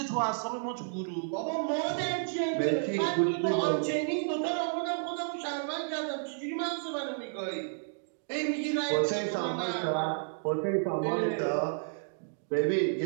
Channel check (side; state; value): left; silent; digital silence